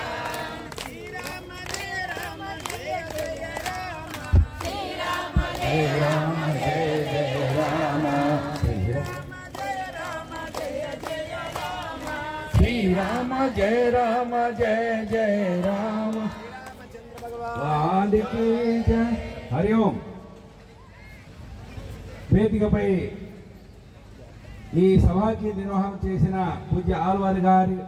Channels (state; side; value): identical; both; correlation 1.00